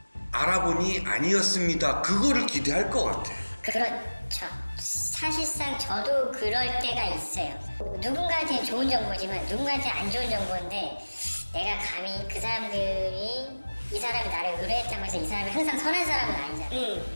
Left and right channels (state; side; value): inverted; both; correlation -1.00